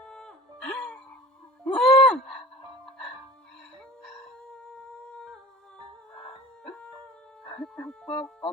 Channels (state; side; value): normal; both; correlation 0.41